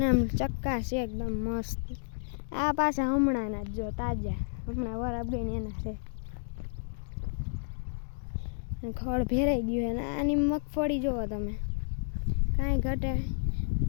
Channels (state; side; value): silent; right; digital silence